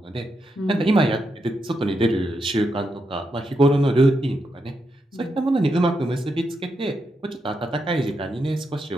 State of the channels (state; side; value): normal; both; correlation 0.83